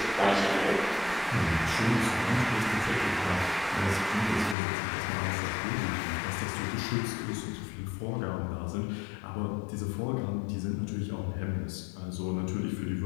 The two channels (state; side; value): drops out; right; at 4.5 s